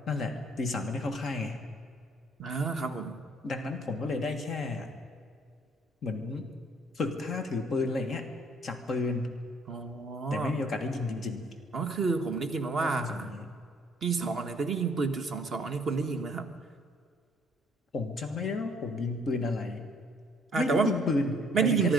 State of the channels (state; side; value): normal; both; correlation 0.61